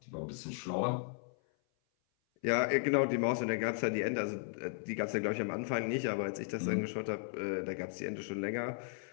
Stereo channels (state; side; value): silent; right; 54 dB below the other